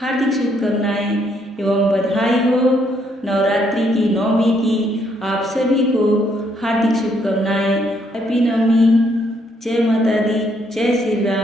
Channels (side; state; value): both; normal; correlation 0.71